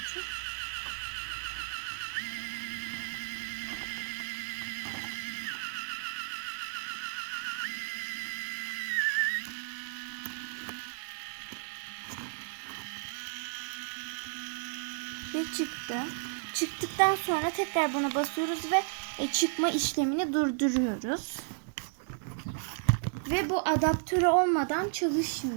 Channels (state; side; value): silent; left; digital silence